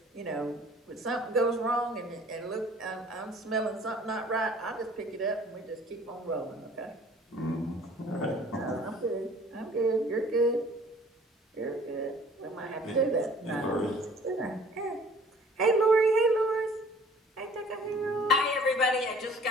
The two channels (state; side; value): normal; both; correlation 0.52